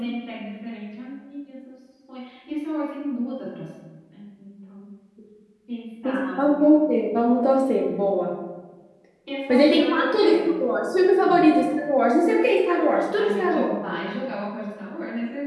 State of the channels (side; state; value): both; identical; correlation 1.00